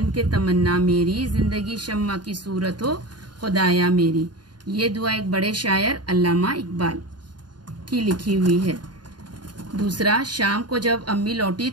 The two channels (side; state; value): left; late; 0.70 ms